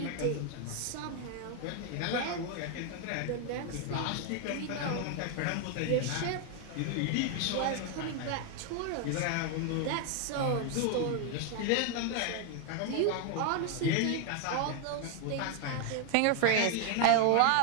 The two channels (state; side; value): different; both; correlation 0.00